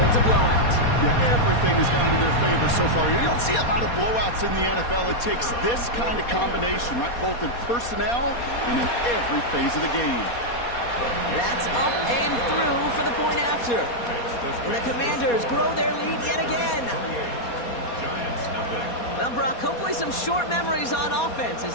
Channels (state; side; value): late; right; 4.2 ms